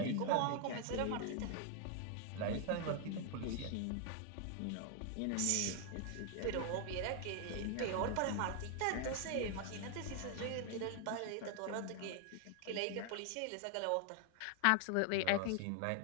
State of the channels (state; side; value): different; both; correlation 0.00